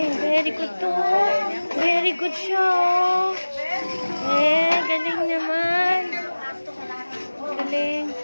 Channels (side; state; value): both; inverted; correlation -1.00